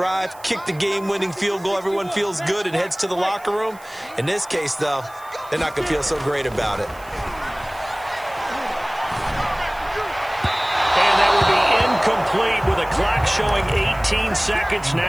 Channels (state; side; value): noise; right; hiss, 24 dB below the sound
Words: kick the game-winning field goal. Everyone feels good and heads to the locker room. In this case, though, they're not going to feel so great about it. And that will be incomplete with a clock showing 18 seconds